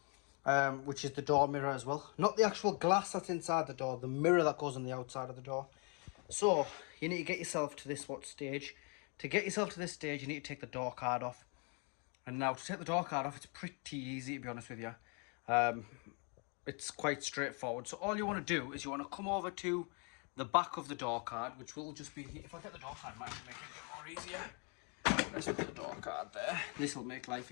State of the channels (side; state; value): right; quieter; 36.0 dB